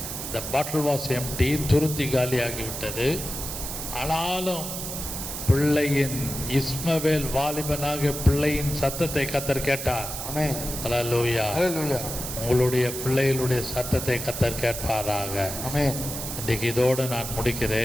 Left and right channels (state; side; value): noise; right; hiss, 6 dB below the sound